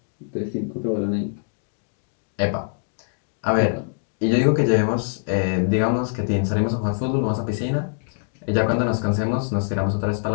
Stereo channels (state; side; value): silent; right; digital silence